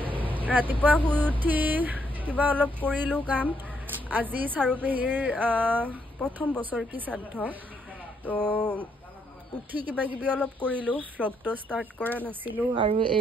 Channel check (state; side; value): normal; both; correlation 0.74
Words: ৰাতিপুৱা শুই উঠি কিবা অলপ কৰিলো কাম। আজি চাৰুপেহীৰ প্ৰথম বছৰ কি শ্ৰাদ্ধ তো উঠি কিবা কিবি অলপ কৰিলো। ভ্লগটো ষ্টাৰ্ট কৰা নাছিলো আৰু